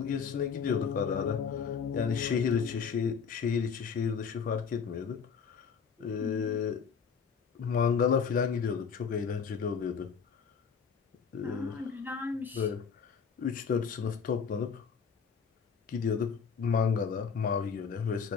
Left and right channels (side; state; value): right; quieter; 6.3 dB